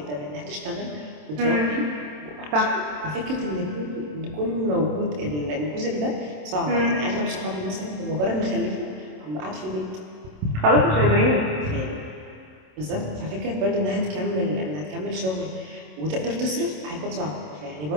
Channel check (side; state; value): left; late; 27 ms